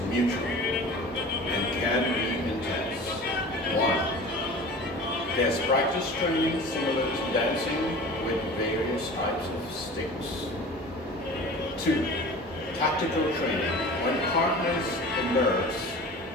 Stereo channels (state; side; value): normal; both; correlation 0.38